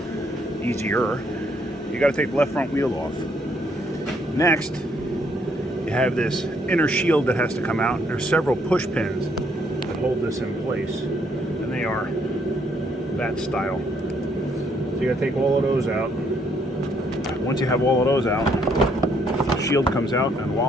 easier. You got to take the left front wheel off. Next, you have this inner shield that has to come out. There's several push pins that hold this in place, and they are that style. So you got to take all of those out. Once you have all of those out, the shield comes out, and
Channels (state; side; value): normal; both; correlation 0.69